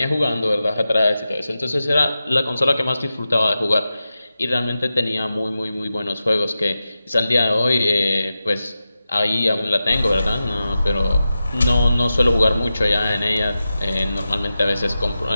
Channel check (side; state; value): both; inverted; correlation -0.92